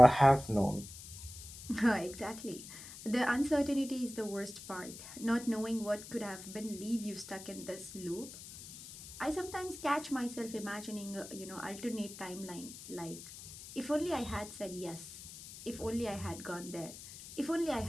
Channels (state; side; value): noise; left; hiss, 14 dB below the sound